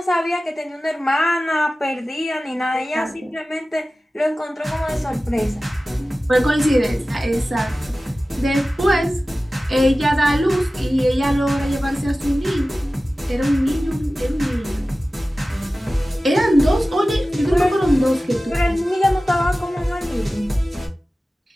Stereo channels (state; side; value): normal; both; correlation 0.96